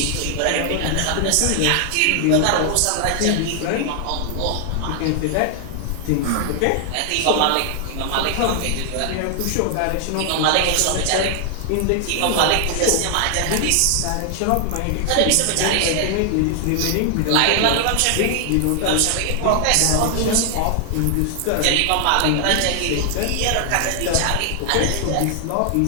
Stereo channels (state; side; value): different; both; correlation 0.00